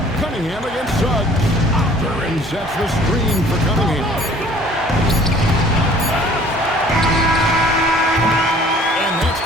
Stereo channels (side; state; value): both; normal; correlation 0.52